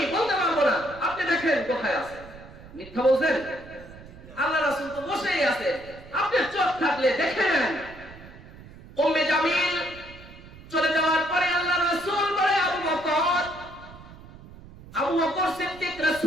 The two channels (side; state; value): right; noise; rumble, 18 dB below the sound